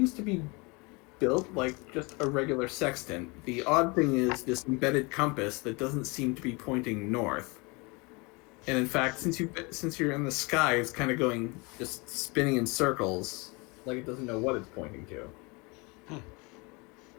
to be built like just a regular sextant. The odd thing is this embedded compass that doesn't seem to be pointing north. And in fact, since you're in the sky, it's kind of going, just spinning in circles, like it doesn't know what it's pointing to.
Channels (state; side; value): quieter; right; 28.1 dB